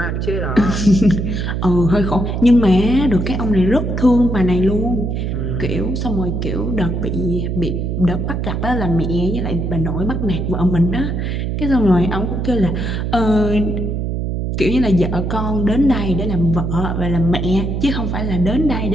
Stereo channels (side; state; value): right; noise; hum, 2 dB below the sound